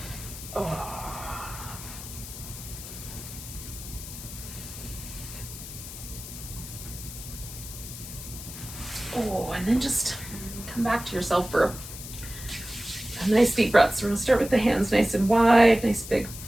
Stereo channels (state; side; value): noise; left; hiss, 11 dB below the sound